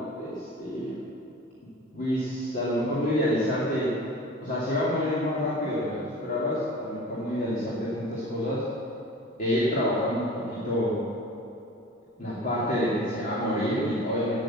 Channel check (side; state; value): both; normal; correlation 0.39